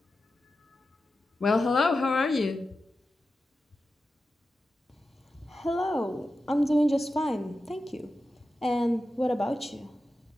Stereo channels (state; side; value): normal; both; correlation 0.92